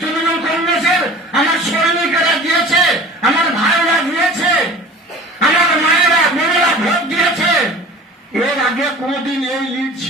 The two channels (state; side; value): normal; both; correlation 0.41